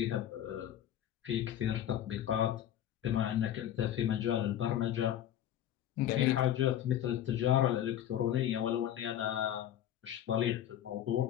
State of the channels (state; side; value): quieter; right; 11.2 dB